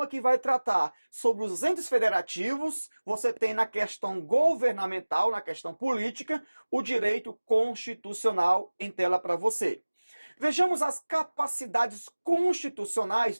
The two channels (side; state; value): both; inverted; correlation -1.00